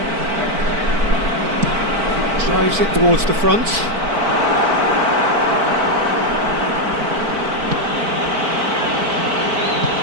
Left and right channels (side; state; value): left; late; 4.5 ms